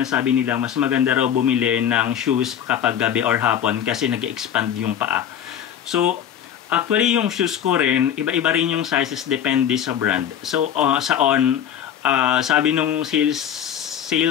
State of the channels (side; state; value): right; quieter; 9.5 dB